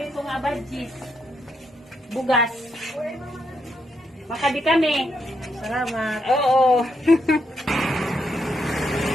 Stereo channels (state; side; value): normal; both; correlation 0.79